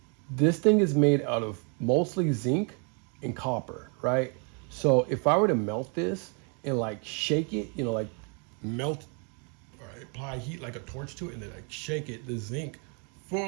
this thing is made out of mostly zinc and copper, right? So if I were to melt this and like shake it, you know, like melt, apply heat like a torch to it and then like shake it, the zinc, for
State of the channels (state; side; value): quieter; left; 37.4 dB